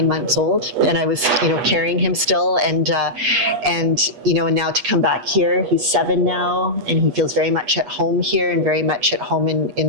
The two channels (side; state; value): left; late; 8.3 ms